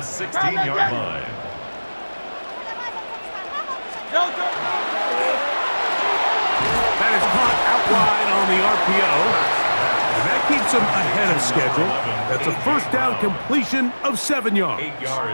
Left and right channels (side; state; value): both; inverted; correlation -1.00